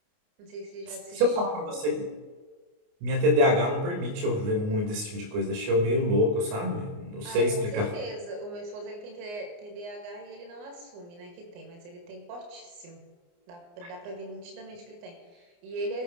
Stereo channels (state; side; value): late; left; 29 ms